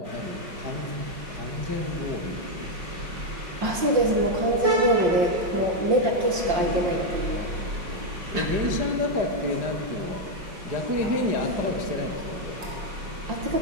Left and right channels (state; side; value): late; left; 5.6 ms